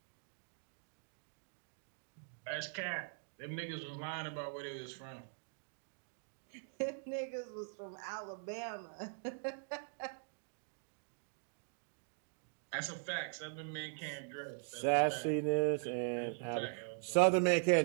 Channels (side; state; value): left; silent; digital silence